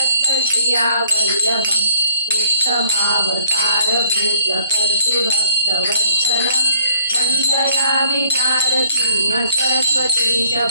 उत्तमावतारभूतकर्तृभक्तवत्सलम् वन्दयामि नारसिंह सरस्वतीश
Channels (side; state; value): both; inverted; correlation -0.64